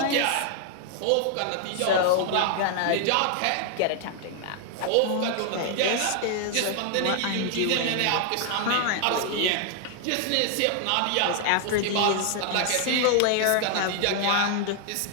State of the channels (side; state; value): both; different; correlation 0.00